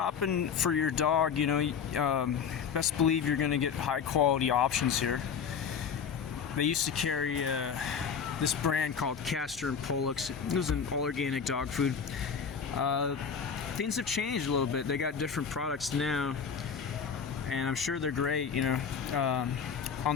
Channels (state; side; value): quieter; right; 6.7 dB